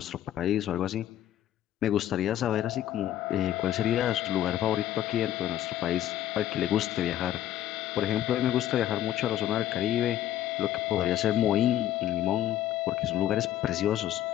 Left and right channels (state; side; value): quieter; right; 12.1 dB